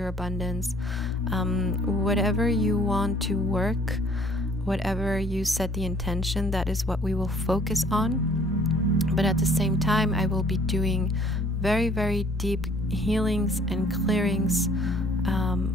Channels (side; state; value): both; normal; correlation 0.57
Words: abundance. Whatever you want to work, whatever you set the intention, that is what we will focus on. But at the same time, I will be doing very, very deep healings and clearings